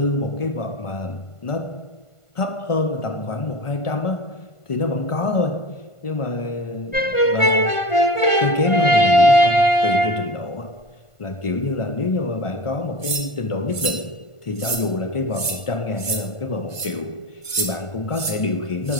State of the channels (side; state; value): right; late; 1.5 ms